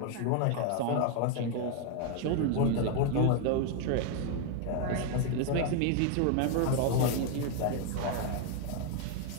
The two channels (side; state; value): both; different; correlation 0.01